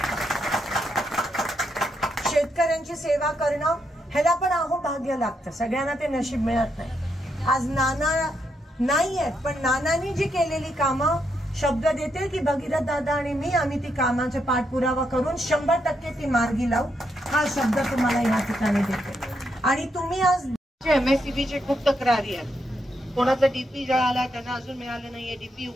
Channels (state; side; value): normal; both; correlation 0.79